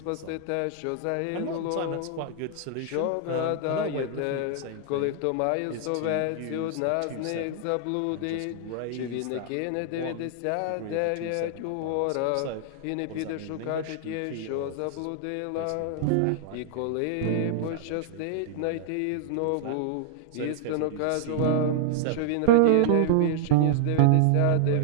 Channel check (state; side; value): different; both; correlation -0.01